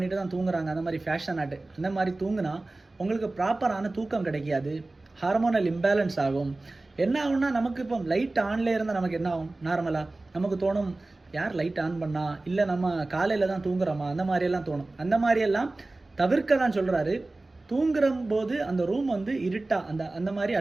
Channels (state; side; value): quieter; left; 3.0 dB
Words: தான் தூங்குறாங்க. அந்த மாதிரி ஃபேஷன் ஆட்டு அந்த மாதிரி தூங்குனா உங்களுக்கு ப்ராப்பரான தூக்கம் கிடைக்காது. ஹார்மோனல் இம்பேலன்ஸ் ஆகும். என்ன ஆகும்னா, நமக்கு இப்போ லைட் ஆன்லேயே இருந்தால் நமக்கு என்ன ஆகும்? நார்மலாக நமக்கு தோணும், யார் லைட் ஆன் பண்ணா, இல்லை நம்ம காலையில் தான் தூங்குறோமா, அந்த மாதிரியெல்லாம் தோணும். அந்த மாதிரியெல்லாம் தவிர்க்க தான் சொல்கிறாரு. தூங்குற போது அந்த ரூம் வந்து இருட்டாக அந்த மாதிரி